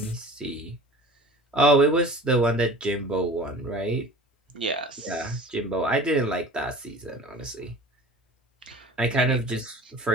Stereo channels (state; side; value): normal; both; correlation 0.42